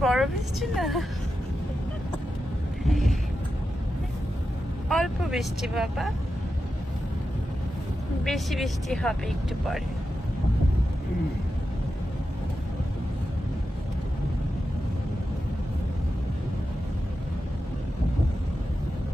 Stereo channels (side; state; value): both; normal; correlation 0.90